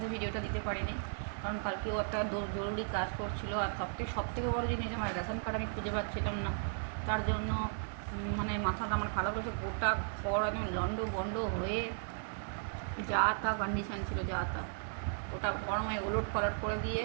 ভিডিওটা দিতে পারিনি, কারণ কালকেও একটা জরুরি কাজ করছিল। আর সব থেকে বড়ো জিনিস, আমার রেশন কার্ড আমি খুঁজে পাচ্ছিলাম না, তার জন্য মানে মাথাটা আমার খারাপ হয়েছে। গোটা ঘর একদম লন্ড বন্ড হয়ে যা তা কন্ডিশান ছিল, যা তা ওটা গরমে ওলট পালট করে দিয়ে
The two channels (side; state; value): left; silent; digital silence